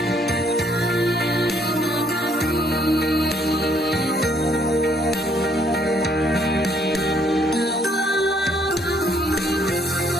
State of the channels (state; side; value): normal; both; correlation 0.67